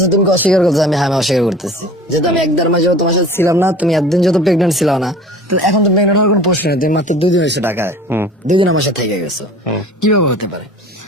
তুমি কি অস্বীকার করতেছো? আমি হ্যাঁ আমি অস্বীকার করতেছি, যেহেতু আমি 1-1.5 মাস যাবত তোমার সাথে ছিলাম না, তুমি একদিন যত প্রেগনেন্ট ছিল না, তাহলে এখন তো প্রেগনেন্ট হওয়ার কোনো প্রশ্ন নেই, তুমি মাত্র 2 দিন হয়েছে ঢাকায়, 2 দিন আমার সাথে থেকে গেছো, কিভাবে হতে পারে?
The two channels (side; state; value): both; normal; correlation 0.43